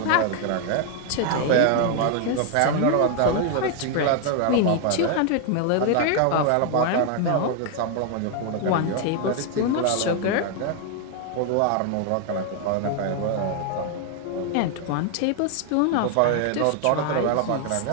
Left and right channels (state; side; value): different; both; correlation 0.00